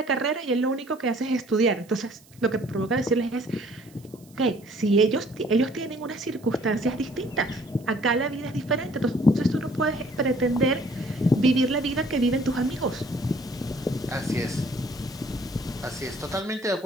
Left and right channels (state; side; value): noise; right; hiss, 27 dB below the sound